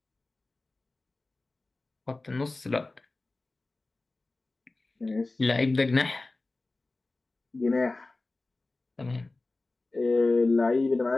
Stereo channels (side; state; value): right; quieter; 3.2 dB